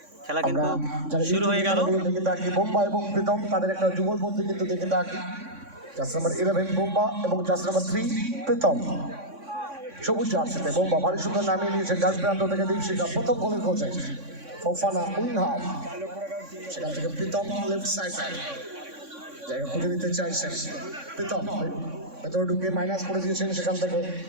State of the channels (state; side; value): late; left; 3.6 ms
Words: খেলা কিন্তু শুরু হয়ে গেল। বোম্বা এবং প্রীতম তাদের একটা যুগলবন্দি কিন্তু দেখে থাকি। জার্সি নাম্বার 11 বোম্বা এবং জার্সি নাম্বার 3 প্রীতম। সবুজ জার্সিতে বোম্বা ভারী সুন্দর নামিয়ে নিয়েছেন ডান প্রান্ত থেকে দীপশিখা প্রথম গোলের খোঁজে। ফোফানা উইং হাফ, সেখান থেকে প্রীতম লেফট সাইড জায়গা খুঁজে নিতে চাইছেন। প্রীতম ভেতরে ঢুকে মাইনাস করে দিয়েছেন, সেখান থেকে